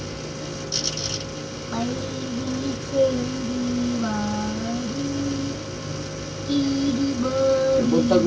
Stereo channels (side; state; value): both; identical; correlation 1.00